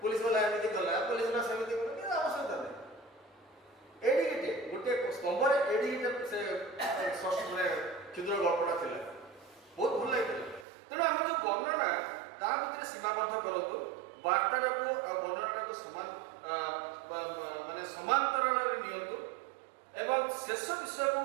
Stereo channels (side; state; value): left; drops out; at 10.7 s